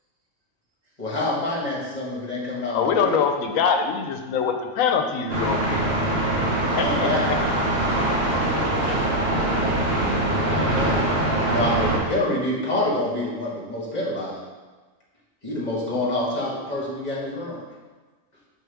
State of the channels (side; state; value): both; normal; correlation 0.02